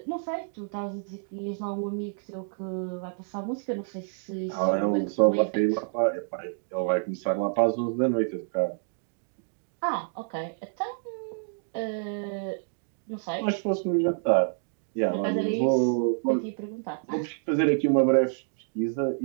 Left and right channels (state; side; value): silent; left; digital silence